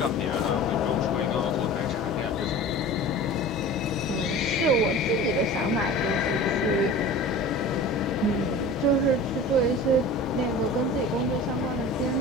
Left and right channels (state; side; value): normal; both; correlation 0.37